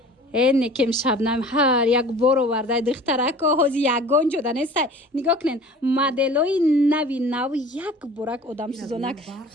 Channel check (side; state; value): both; normal; correlation 0.43